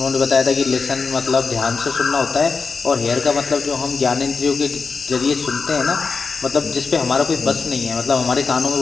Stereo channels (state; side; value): quieter; right; 4.8 dB